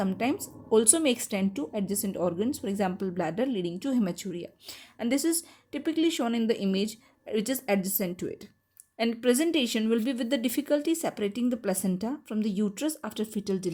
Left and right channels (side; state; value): both; identical; correlation 1.00